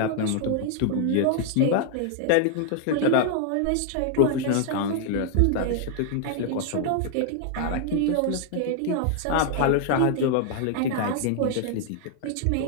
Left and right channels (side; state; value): both; different; correlation 0.00